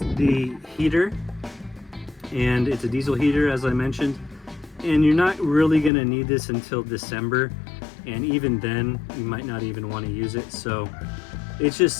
the heater. and it's a diesel heater, as I mentioned, and you're not really going to need this until December, and even then you might not even want to use it. So it's just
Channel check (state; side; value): drops out; right; at 5.9 s